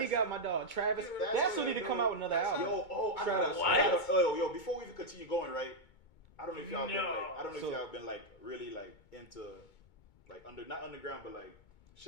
he got my dog Travis. That's who need to come out with another album. I Travis. gotta, yo, before we even continue going, right? I don't know if y'all been No. like, I don't know if So- y'all been like really like into like not underground, but like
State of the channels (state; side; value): late; right; 2.2 ms